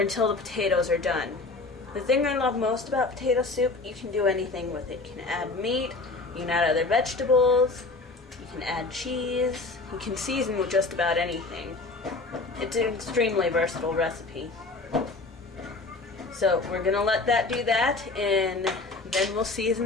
the potatoes are done. The thing I love most about potato soup, you can do anything with it. You can add meat, you can add other vegetables, you can add cheese, you can season with just about anything. It's an extremely versatile recipe. So we're going to let that do that, and then we'll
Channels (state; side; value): quieter; right; 3.5 dB